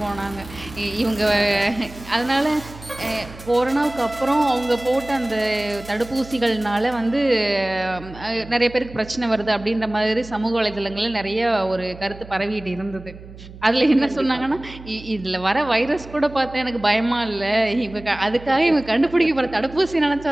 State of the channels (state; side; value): noise; right; hum, 17 dB below the sound